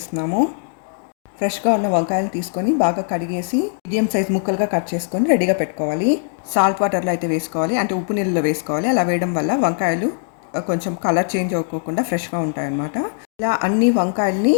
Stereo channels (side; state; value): right; silent; digital silence